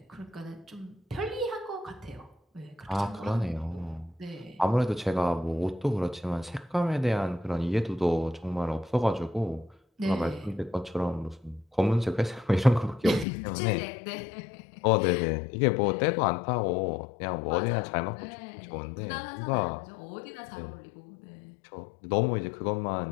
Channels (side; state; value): right; drops out; at 13.2 s